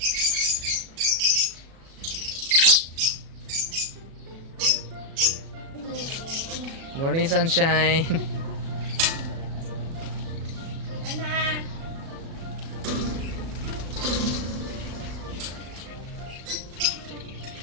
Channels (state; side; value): late; left; 36 ms